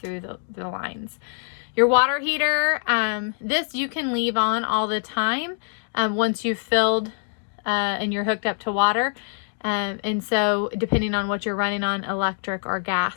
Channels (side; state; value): right; silent; 62 dB below the other